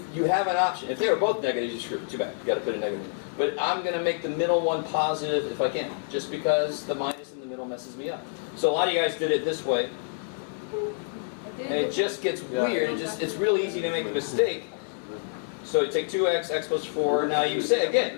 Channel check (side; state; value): right; silent; digital silence